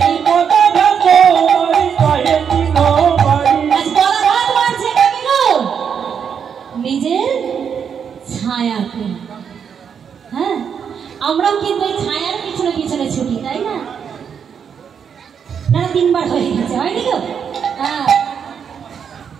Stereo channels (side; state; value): left; quieter; 7.3 dB